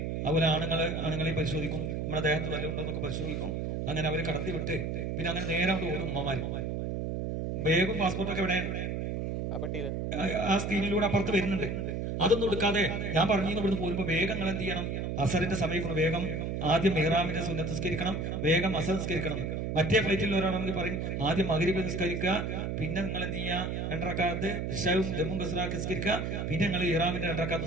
അതുപോലെ ആണുങ്ങളെയും പരിശോധിക്കും. നമ്മുടെ ദേഹത്ത് വല്ലതും ഉണ്ടോന്നൊക്കെ പരിശോധിക്കും. അങ്ങനെ അവരെ കടത്തി വിട്ട് പിന്നെ അങ്ങനെ നേരെ അവിടെ ഓടും ഉമ്മമാര്. ബാഗും പാസ്പോർട്ടൊക്കെ ഇവിടെ ആ സ്ക്രീനിലൂടെ അപ്പുറത്ത് വരുന്നുണ്ട്. അതൊന്നും എടുക്കാതെ ഞാൻ പറഞ്ഞു ഇവിടുന്ന് പോരുമ്പോ വേഗം നിങ്ങൾ എന്ത് ചെയ്യണം? അസറിന്റെ സമയം വേഗം ആദ്യം മെഹ്റാമിന്റെ സുന്നത്ത് നിസ്കരിക്കണം, വേഗം അസർ നിസ്കരിക്കണം. മറ്റേ ഫ്ലൈറ്റിൽ ഒരാളാണെങ്കിൽ പറയും ആദ്യം മഗ്രിബ് നിസ്കരിക്കുക, പിന്നെ നിങ്ങൾ എന്ത് ചെയ്യുക? 2 റക്അത്ത് ഇശാഉം ജമ്മും കസ്റാക്കി നിസ്കരിക്കുക, പിന്നെ നിങ്ങൾ ഇഹ്റാമിന്റെ 2 റക്അത്ത്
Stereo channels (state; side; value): noise; right; hum, 2 dB below the sound